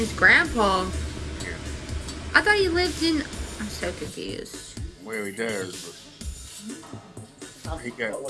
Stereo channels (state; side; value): identical; both; correlation 1.00